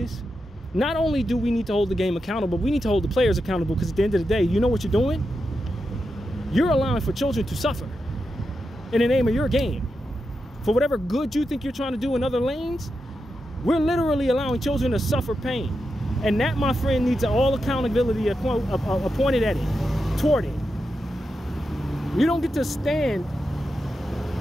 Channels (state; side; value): normal; both; correlation 0.88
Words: not only do we need to hold the game accountable, we need to hold the players accountable, because at the end of the day, you know what you're doing? You're allowing for children to suffer in the name of your game. For whatever good you think you're trying to do in other lanes, we're literally allowing children to suffer pain. And that, my friend, needs all accountability appointed at it, toward it. You don't get to stand